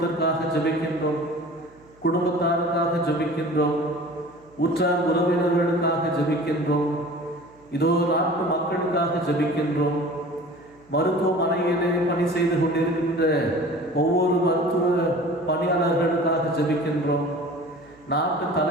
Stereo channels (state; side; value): noise; right; hum, 28 dB below the sound